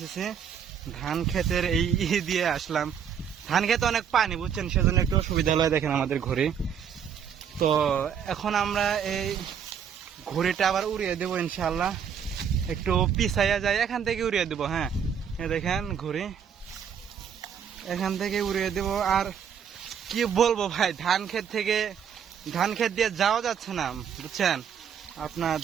ধান খেতের এই দিয়ে আসলাম। ধান খেতে অনেক পানি, বুঝছেন, সেজন্য একটু অসুবিধা হলো। দেখেন আমাদের ঘড়ি। তো এখন আমরা এই ঘড়িটা আবার উড়িয়ে দেবো ইনশাল্লাহ। একটু পিছাইয়া যায়, এখান থেকে উড়িয়ে দেবো। হ্যাঁ, দেখেন ঘড়ি এখান থেকে উড়িয়ে দেবো। আর কি বলবো ভাই, ধান ক্ষেত দিয়ে যাওয়া যাচ্ছে না, বুঝছেন। আপনার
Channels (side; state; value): left; quieter; 7.9 dB